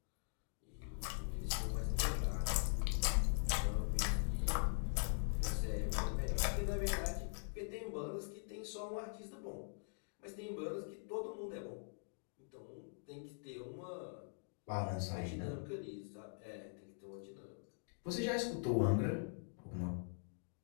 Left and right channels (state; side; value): silent; right; digital silence